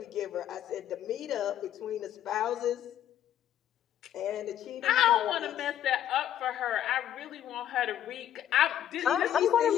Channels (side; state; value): right; quieter; 11.0 dB